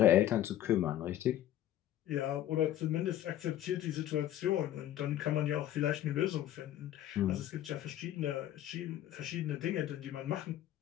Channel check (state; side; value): quieter; right; 12.4 dB